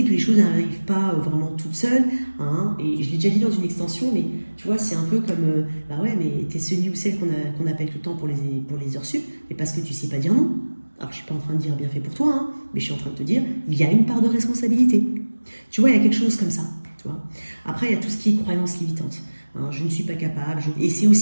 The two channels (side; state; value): both; inverted; correlation -1.00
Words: que les choses n'arrivent pas vraiment toutes seules. Hein, et je l'ai déjà dit dans une extension, mais tu vois, c'est un peu comme, bah ouais, mais t'es celui ou celle qu'on appelle tout le temps pour les heures sup, mais parce que tu sais pas dire non. Alors je suis pas en train de dire bien fait pour toi, hein, mais je suis en train de te dire, il y a une part de responsabilité. Tu vois, il y a quelque chose comme ça. Tu vois. Après, il y a tout ce qui est croyance limitante. Hein, je ne suis pas capable. Et c'est